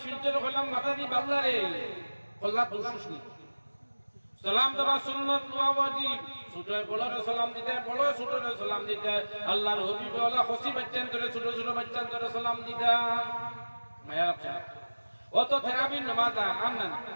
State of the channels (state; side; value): inverted; both; correlation -1.00